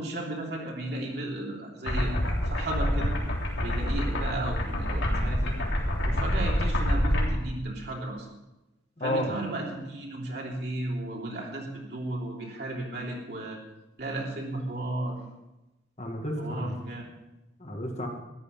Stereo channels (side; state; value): both; normal; correlation 0.74